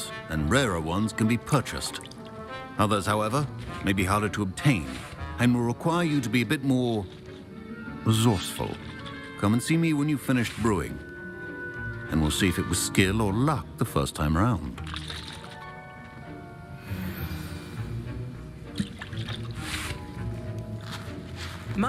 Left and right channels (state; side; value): identical; both; correlation 1.00